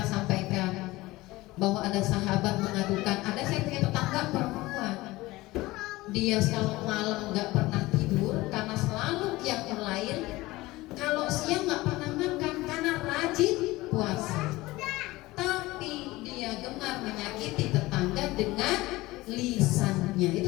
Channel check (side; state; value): right; quieter; 19.4 dB